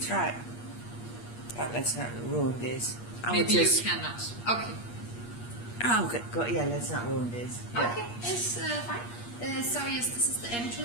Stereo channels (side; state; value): right; late; 8.5 ms